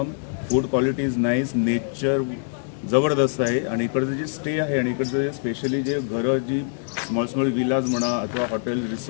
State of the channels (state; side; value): silent; right; digital silence